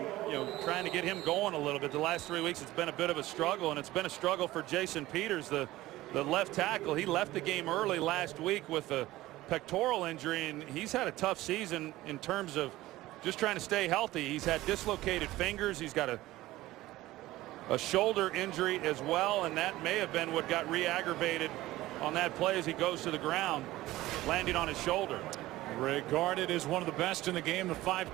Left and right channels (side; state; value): left; quieter; 17.0 dB